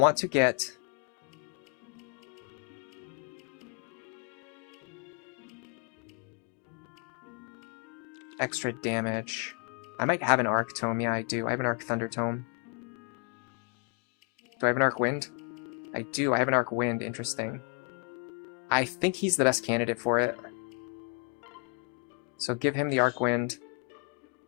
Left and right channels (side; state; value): right; quieter; 32.9 dB